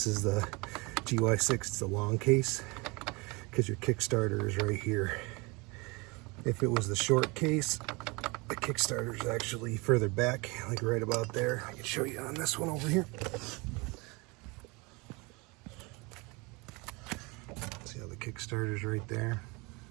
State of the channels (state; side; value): quieter; left; 26.8 dB